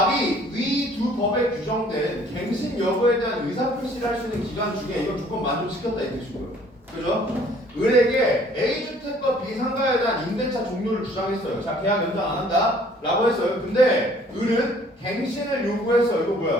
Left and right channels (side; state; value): both; normal; correlation 0.57